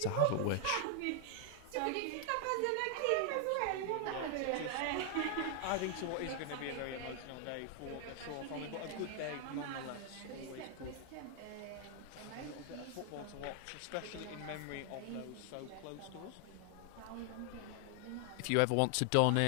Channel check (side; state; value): both; different; correlation 0.00